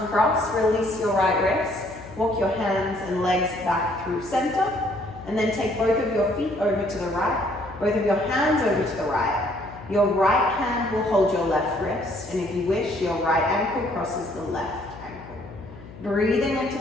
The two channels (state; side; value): noise; left; hum, 17 dB below the sound